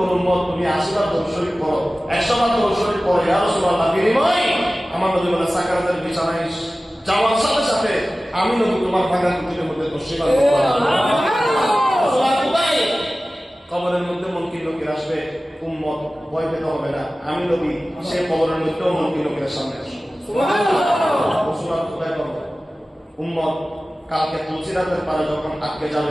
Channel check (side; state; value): both; normal; correlation 0.96